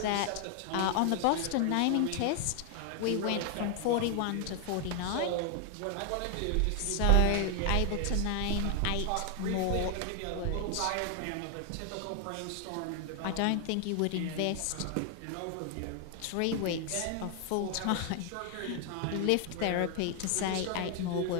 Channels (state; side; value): different; both; correlation 0.00